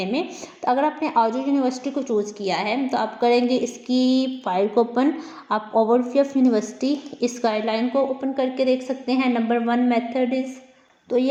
में। तो अगर आपने आजू यूनिवर्सिटी को चूज़ किया है तो आप करेंगे इसकी फाइल को ओपन, आप ओवरव्यू ऑफ यूनिवर्सिटी इस गाइडलाइन को ओपन करके देख सकते हैं। नंबर 1 मेथड इज़, तो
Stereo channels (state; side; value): identical; both; correlation 1.00